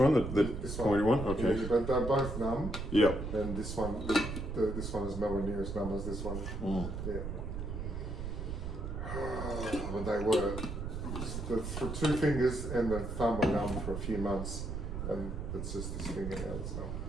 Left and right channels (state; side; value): noise; right; rumble, 5 dB below the sound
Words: The This pointy one? Okay. Yeah, but they're both numb. Yep. And this one, this one is nowhere near as numb as this one. Yeah. When they were, the 2 fingers and the thumb were numb for a few months, and it's just this finger now that's numb.